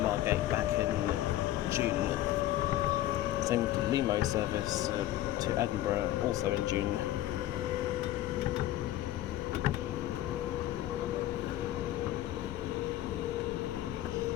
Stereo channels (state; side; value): quieter; right; 14.1 dB